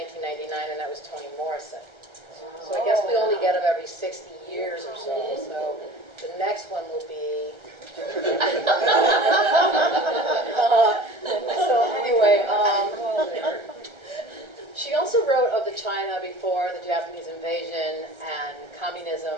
and that was Toni Morrison. So I guess we only get them every 60 years or so. So the next one will be. So anyway, she also wrote of the China before the Japanese invasion and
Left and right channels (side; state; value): left; late; 1.3 ms